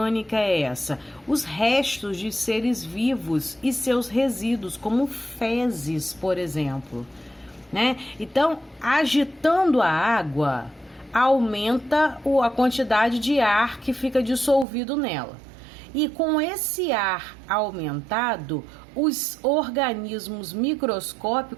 é essa? Os restos de seres vivos e seus resíduos, como fezes, por exemplo, né? Então, agitando a água, aumenta a quantidade de ar que fica dissolvido nela. E com esse ar aumentado, os organismos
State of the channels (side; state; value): left; drops out; at 14.7 s